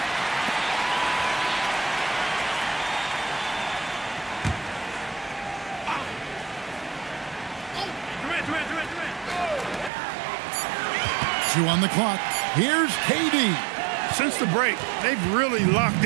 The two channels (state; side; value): drops out; left; at 9.9 s